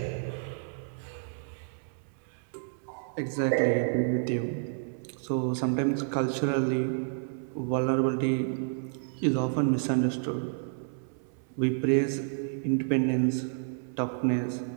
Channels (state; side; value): silent; left; 58 dB below the other